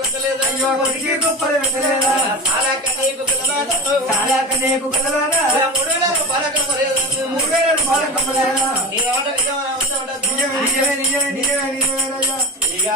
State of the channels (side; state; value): both; normal; correlation 0.27